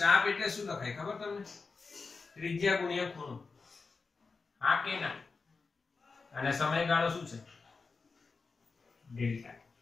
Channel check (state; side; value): quieter; right; 4.4 dB